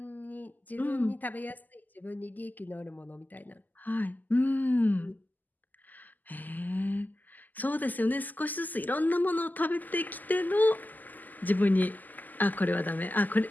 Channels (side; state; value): right; late; 0.084 ms